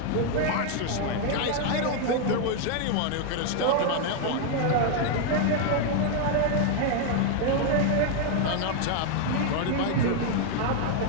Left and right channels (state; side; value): different; both; correlation 0.00